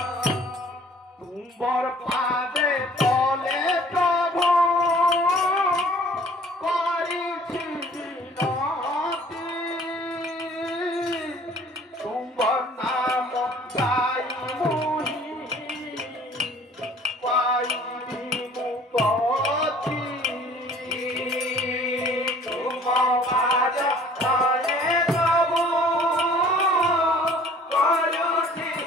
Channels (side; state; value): both; normal; correlation 0.52